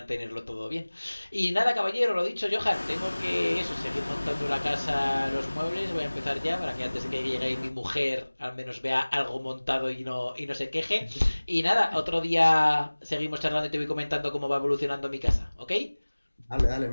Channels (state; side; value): inverted; both; correlation -1.00